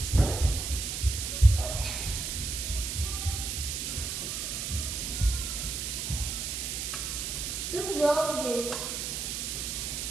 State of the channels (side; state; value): right; noise; hiss, 3 dB below the sound